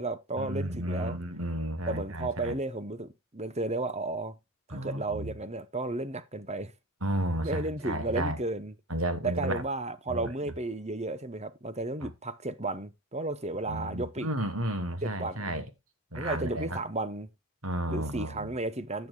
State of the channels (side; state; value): both; normal; correlation 0.31